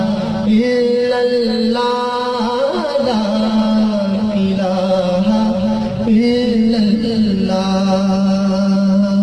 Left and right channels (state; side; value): identical; both; correlation 1.00